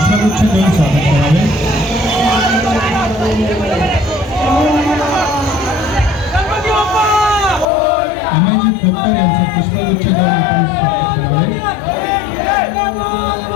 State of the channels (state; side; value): drops out; right; at 7.7 s